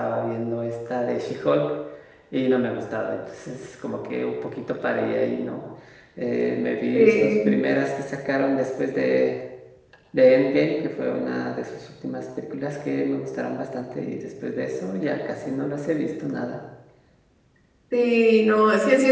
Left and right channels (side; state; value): both; identical; correlation 1.00